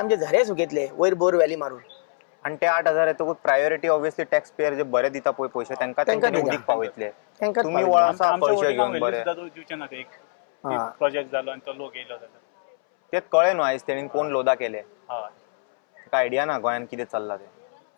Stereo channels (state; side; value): silent; right; 63 dB below the other